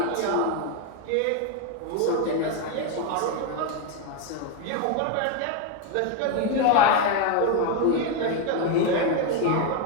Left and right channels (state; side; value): different; both; correlation 0.02